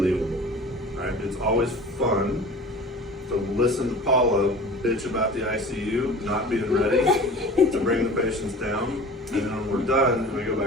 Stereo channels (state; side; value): normal; both; correlation 0.40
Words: Right? It's always fun to listen to Paula bitch about the ICU not being ready to bring the patients down, and then when we're done and we go